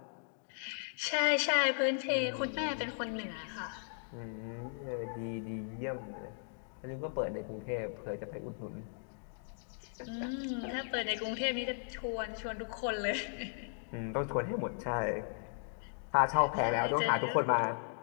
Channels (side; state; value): right; silent; digital silence